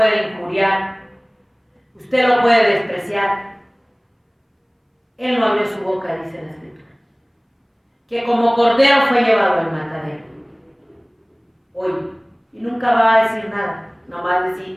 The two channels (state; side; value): identical; both; correlation 1.00